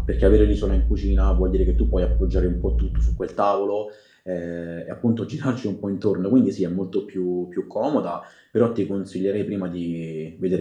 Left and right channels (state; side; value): identical; both; correlation 1.00